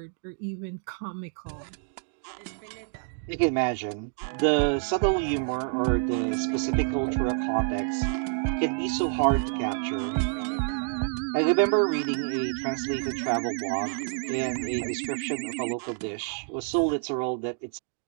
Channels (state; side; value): silent; left; 57 dB below the other